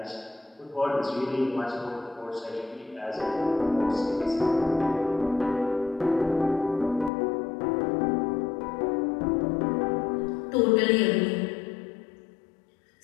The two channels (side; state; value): right; drops out; at 7.1 s